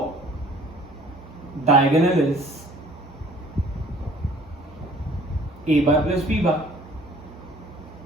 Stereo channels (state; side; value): normal; both; correlation 0.54